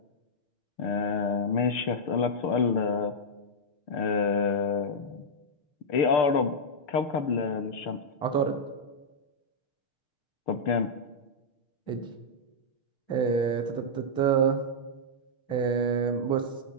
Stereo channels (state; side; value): late; right; 6.8 ms